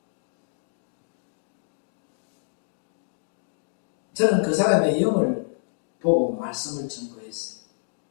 저는 그 사람의 영을 보고 말씀을 증거했어요.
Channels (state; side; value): silent; right; digital silence